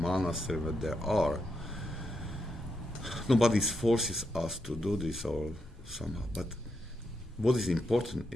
that there are. Nobody forces us to do this or somehow. But what is important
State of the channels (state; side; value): normal; both; correlation 0.83